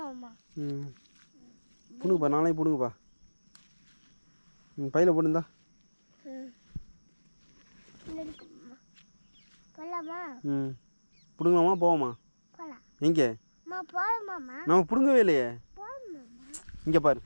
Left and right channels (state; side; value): inverted; both; correlation -1.00